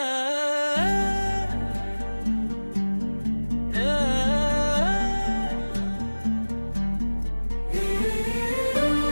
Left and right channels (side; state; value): both; inverted; correlation -1.00